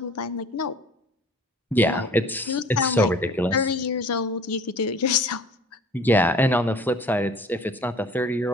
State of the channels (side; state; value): both; normal; correlation 0.48